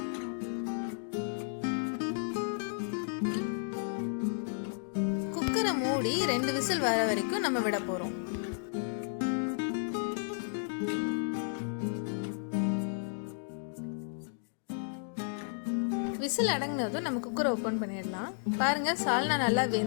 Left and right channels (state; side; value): silent; right; digital silence